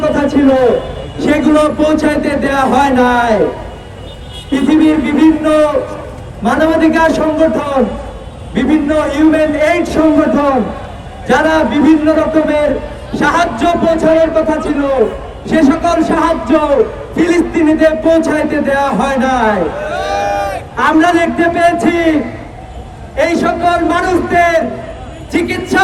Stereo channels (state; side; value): identical; both; correlation 1.00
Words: কথা ছিল সেগুলো পৌঁছাইতে দেওয়া হয় নাই। পৃথিবীর বিভিন্ন মানবাধিকার সংগঠন, বিভিন্ন হিউম্যান এইড সংগঠন যারা বিভিন্ন রকমের সাহায্য পৌঁছানোর কথা ছিল সে সকল সাহায্য ফিলিস্তিনিতে পৌঁছাইতে দেওয়া হয় নাই। আমরা দেখতে পেয়েছি এই সকল মানুষদের চিকিৎসা